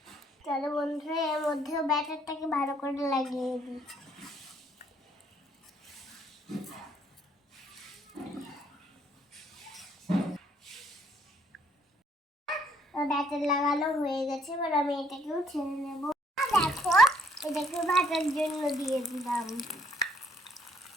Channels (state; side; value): normal; both; correlation 0.67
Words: চলো বন্ধুরা, এর মধ্যেও ব্যাটারটাকে ভালো করে লাগিয়ে দিই। ব্যাটার লাগানো হয়ে গেছে, এবার আমি এটাকেও ছেড়ে নেব। দেখো, এটাকে ভাজার জন্য দিয়ে দিলাম।